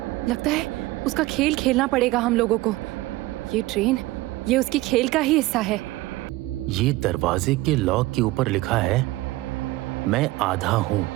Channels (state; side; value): quieter; left; 19.1 dB